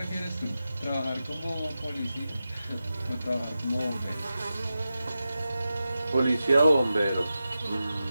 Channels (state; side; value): inverted; both; correlation -0.92